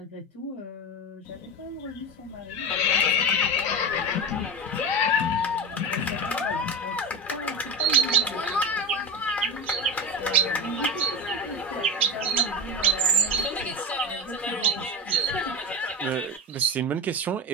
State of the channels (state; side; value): normal; both; correlation 0.22